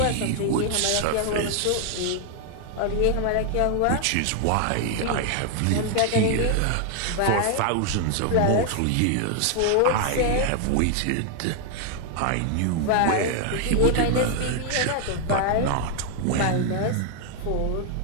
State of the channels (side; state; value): both; different; correlation 0.00